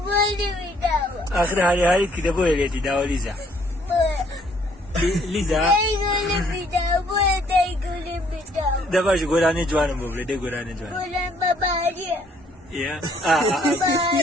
bidawa. Akhir hari kita boleh di dawa Liza. Liza, Dai gudu bidawa. Dai gudu bidawa. da ba shi gora ne juwanin bobre dai gora ne juwanin. Bulan babariya. Ya.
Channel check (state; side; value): normal; both; correlation 0.64